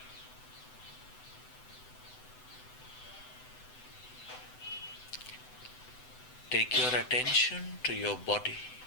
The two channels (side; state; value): right; late; 7.9 ms